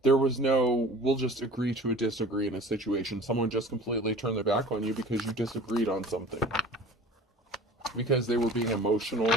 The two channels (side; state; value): both; normal; correlation 0.43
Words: There was no, we'll just agree to disagree in a situation. Someone just completely turned their back on you because you disagreed on something. Because they were being emotional,